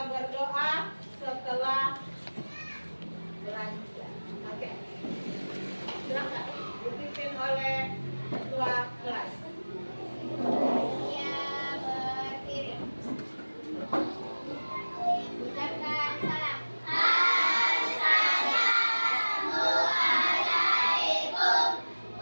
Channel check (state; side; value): inverted; both; correlation -1.00